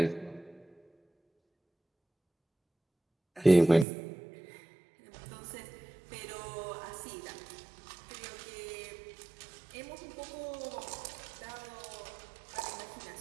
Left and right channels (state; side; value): drops out; left; at 3.9 s